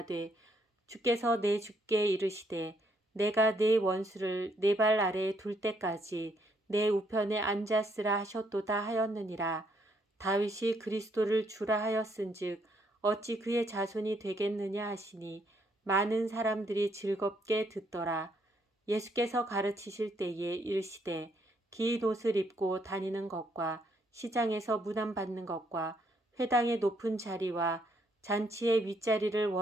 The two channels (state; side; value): normal; both; correlation 0.71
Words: 주께서 내 주께 이르시되 내가 내 원수를 내 발 아래에 둘 때까지 내 우편에 앉았으라 하셨도다 하였느니라. 다윗이 그리스도를 주라 하였은즉 어찌 그의 자손이 되겠느냐 하시니 많은 사람들이 즐겁게 듣더라. 예수께서 가르치실 때에 이르시되 긴 옷을 입고 다니는 것과 시장에서 문안받는 것과 회당의 높은 자리와 잔치의 윗자리를